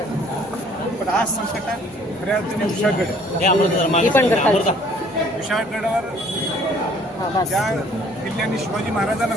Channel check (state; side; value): normal; both; correlation 0.57